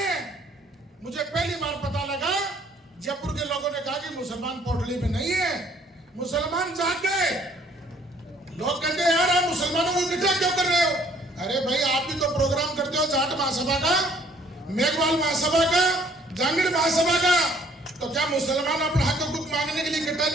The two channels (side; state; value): both; normal; correlation 0.61